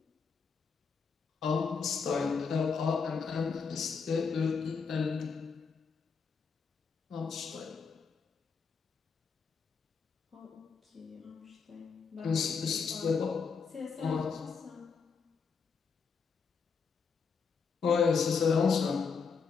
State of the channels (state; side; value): quieter; right; 5.5 dB